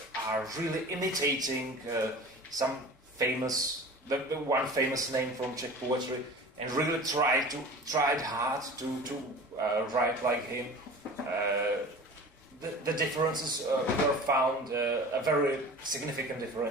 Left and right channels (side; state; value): both; normal; correlation 0.39